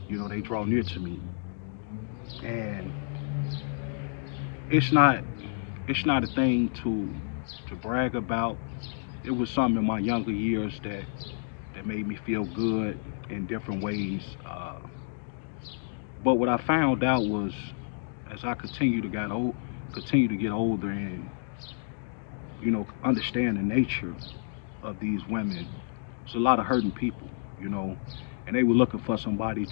they draw near to me. And it's not it's not a thing to brag about. It was something in my younger years that made me feel good in different ways. But what I found out was, as I continue to get older and understand the nature of these women, there's a lot of hurting people, you know, and they were looking for somebody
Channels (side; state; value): right; silent; digital silence